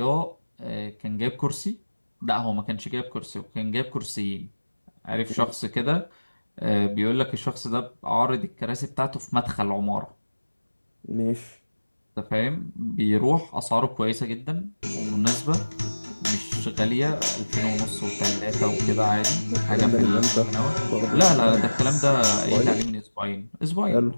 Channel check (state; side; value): inverted; both; correlation -1.00